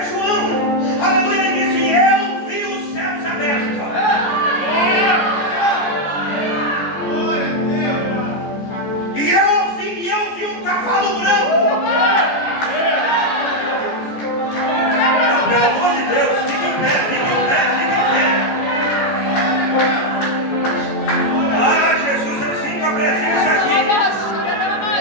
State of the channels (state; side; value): late; right; 14 ms